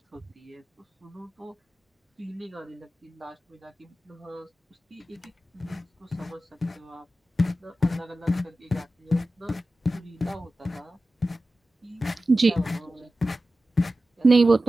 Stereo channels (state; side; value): normal; both; correlation 0.94